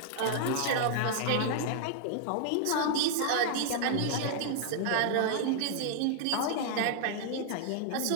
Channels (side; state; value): both; different; correlation -0.01